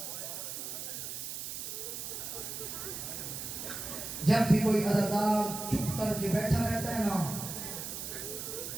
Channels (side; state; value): right; noise; hiss, 6 dB below the sound